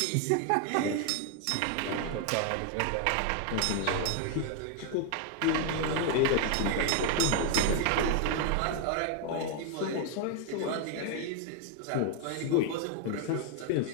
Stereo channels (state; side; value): different; both; correlation 0.01